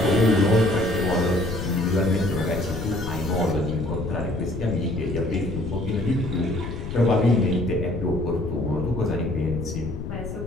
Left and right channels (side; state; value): left; noise; rumble, 7 dB below the sound